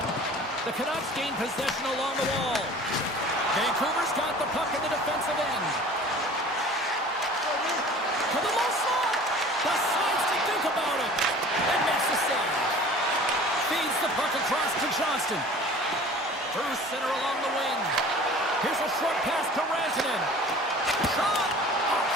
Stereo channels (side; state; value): both; normal; correlation 0.44